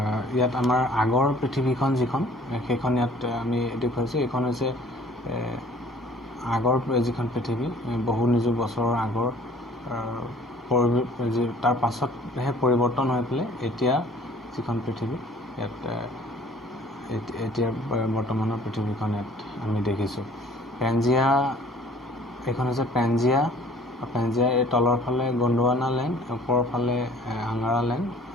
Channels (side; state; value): both; normal; correlation 0.53